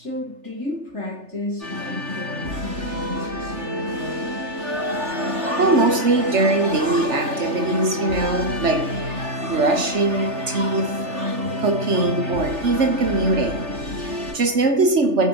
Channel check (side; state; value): left; late; 3.4 ms